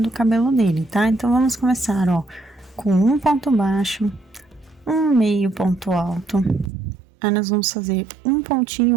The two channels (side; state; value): left; drops out; at 6.7 s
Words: cabelo dele, tá? Então, vamos começar, ó, com um ponto baixo, um meio ponto alto. Aí, nós vamos fazer um